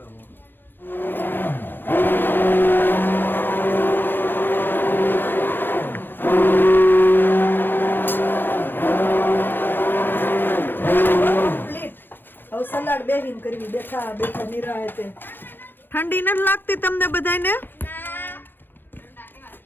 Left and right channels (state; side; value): late; right; 0.097 ms